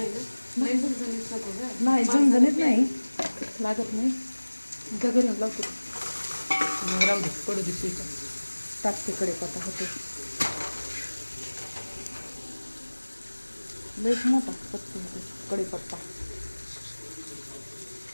ना नाही झणझणीत नको गं. नाही झणझणीत नाही लागत नाही. घरून लावतो राहू दे पडू दे स्वीच. टाकते कढीपत्ता होते लईच मोठा पत्ता होते कढीपत्ता.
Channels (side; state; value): both; inverted; correlation -1.00